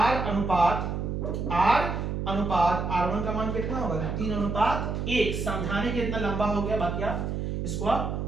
अनुपात r1 का मान कितना होगा 3/1। समझाने के इतना लंबा हो गया, बाकी आप इसको आप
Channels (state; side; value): noise; right; hum, 2 dB below the sound